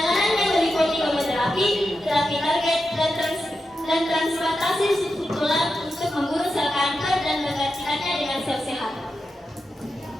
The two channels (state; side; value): normal; both; correlation 0.89